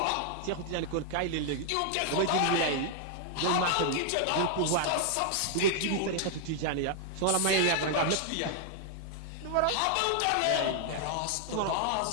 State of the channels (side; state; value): both; different; correlation 0.00